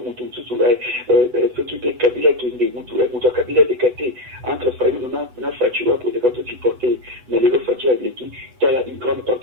ceux qui étaient Kabila qui est Kabila décaté entre Fayou, on a Fatua pour les cartes supportés, mais les autres Fatua avec qui il y a une grande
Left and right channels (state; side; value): late; left; 8.0 ms